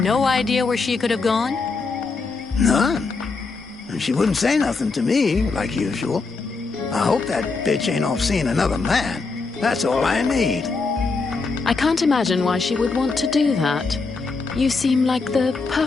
idea where she could have gone? None. And she wouldn't say nothing to me, like usual. I hope that bitch ain't off seeing another man. That's all I need. I can't imagine why she would want to do that. You seem like the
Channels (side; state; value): right; quieter; 4.2 dB